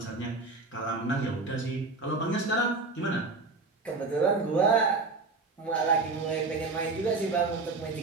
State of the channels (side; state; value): left; quieter; 3.8 dB